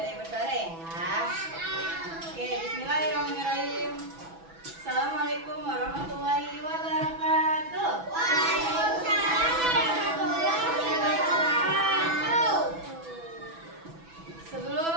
yang bersuara ya. Oke, bismillahirrahmanirrahim. Assalamualaikum warahmatullahi wabarakatuh. Waalaikumsalam warahmatullahi wabarakatuh.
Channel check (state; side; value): late; left; 6.1 ms